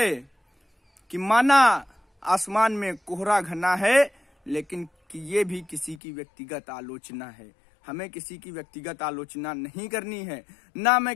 कि माना आसमान में कोहरा घना है, लेकिन कि ये भी किसी की व्यक्तिगत आलोचना है। हमें किसी की व्यक्तिगत आलोचना नहीं करनी है। ना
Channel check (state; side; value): drops out; right; at 6.0 s